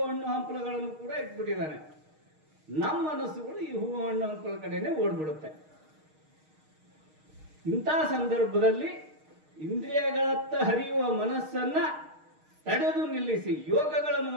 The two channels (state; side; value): late; left; 6.5 ms